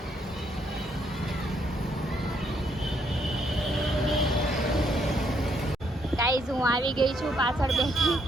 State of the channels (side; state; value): both; normal; correlation 0.72